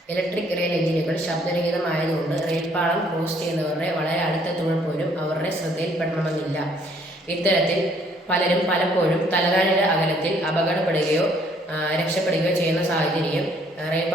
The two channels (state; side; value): normal; both; correlation 0.64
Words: ഇലക്ട്രിക് റെയിൽ എഞ്ചിനുകൾ ശബ്ദരഹിതമായതുകൊണ്ട് റെയിൽപാളം ക്രോസ് ചെയ്യുന്നവരുടെ വളരെ അടുത്തെത്തുമ്പോൾ പോലും അവരുടെ ശ്രദ്ധയിൽപ്പെടണമെന്നില്ല. ഇത്തരത്തിൽ പലരും പലപ്പോഴും തലനാരിഴ അകലത്തിൽ അപകടപ്പെടുകയോ രക്ഷപ്പെടുകയോ ചെയ്യുന്ന സാഹചര്യം